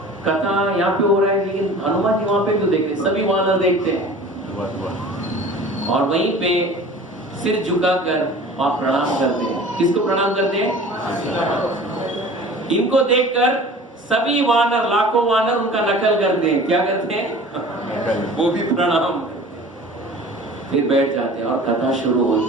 कथा यहाँ पे हो रहा है, लेकिन हनुमान जी वहां पे क्यों देख रहे? सभी वानर देखते हैं और वहीं पे सिर झुकाकर और प्रणाम करते हैं। किसको प्रणाम करते हैं? इनको देखकर सभी वानर, लाखों वानर उनका नकल करते हैं। क्या करते हैं? वो भी प्रणाम, फिर बैठ जाते हैं और कथा शुरू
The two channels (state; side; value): normal; both; correlation 0.43